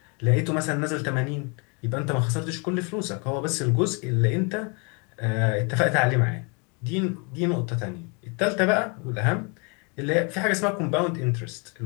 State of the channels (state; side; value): quieter; right; 33.5 dB